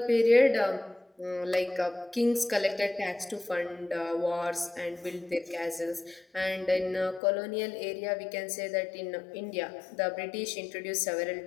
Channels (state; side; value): drops out; right; at 7.2 s